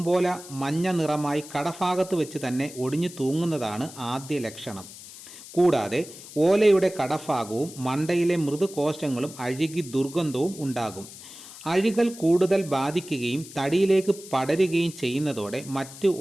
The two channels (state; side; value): noise; left; hiss, 16 dB below the sound